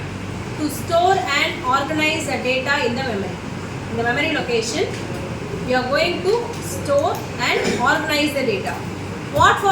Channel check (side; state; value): both; identical; correlation 1.00